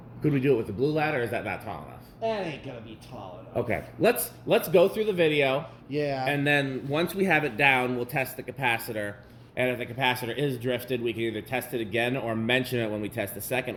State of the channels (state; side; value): identical; both; correlation 1.00